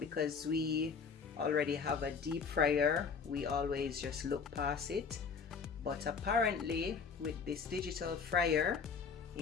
we already have a deep fryer, we always just look past it. But apparently with this digital fryer,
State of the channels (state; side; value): quieter; right; 5.7 dB